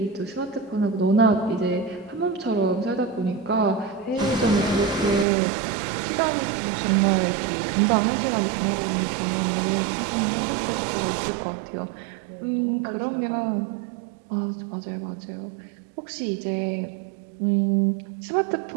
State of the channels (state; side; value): drops out; left; at 5.2 s